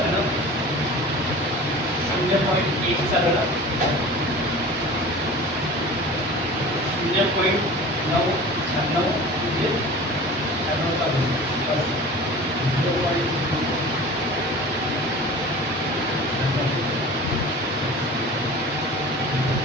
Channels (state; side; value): normal; both; correlation 0.39